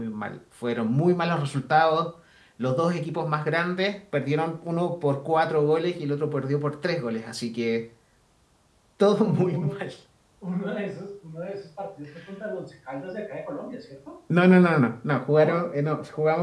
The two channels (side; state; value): both; identical; correlation 1.00